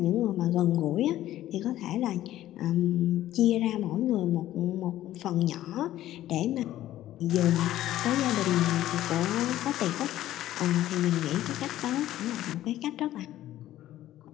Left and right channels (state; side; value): quieter; right; 13.7 dB